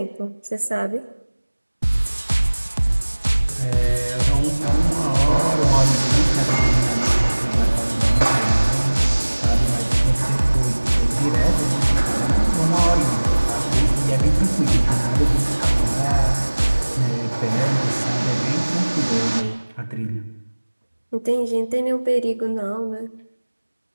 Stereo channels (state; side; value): inverted; both; correlation -1.00